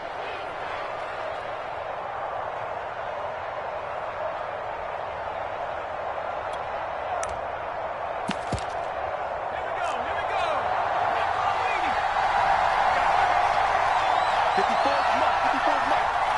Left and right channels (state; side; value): identical; both; correlation 1.00